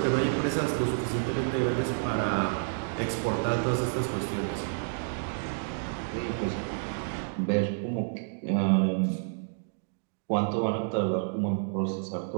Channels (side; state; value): left; silent; digital silence